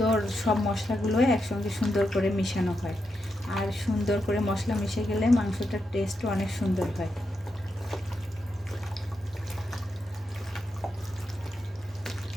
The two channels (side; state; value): both; normal; correlation 0.85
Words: সব মশলাগুলো একসঙ্গে সুন্দর করে মিশানো হয়, আর সুন্দর করে মশলা মিশে গেলে মাংসটার টেস্টও অনেক সুন্দর হয়।